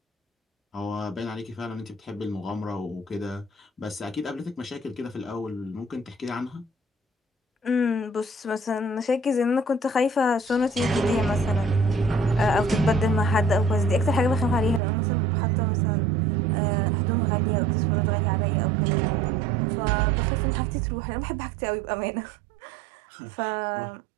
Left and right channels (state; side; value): drops out; left; at 14.8 s